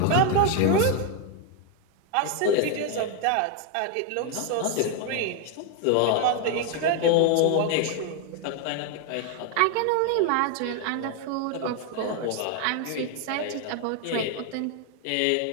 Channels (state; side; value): different; both; correlation 0.01